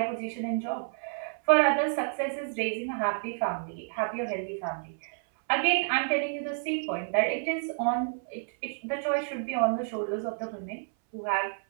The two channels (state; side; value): silent; left; 58 dB below the other